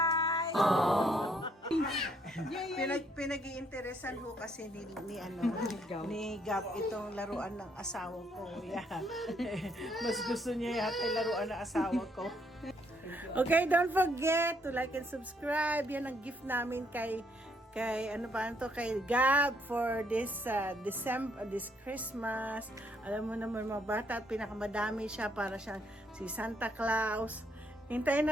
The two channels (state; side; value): normal; both; correlation 0.70